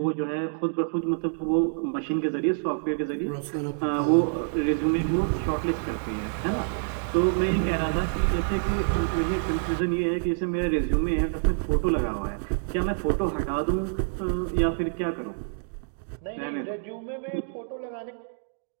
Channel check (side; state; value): left; silent; digital silence